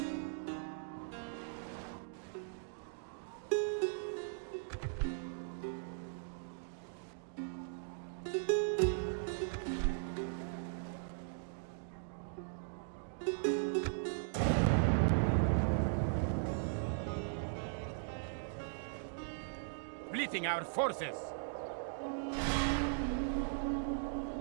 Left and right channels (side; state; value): left; silent; digital silence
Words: Splitting our forces.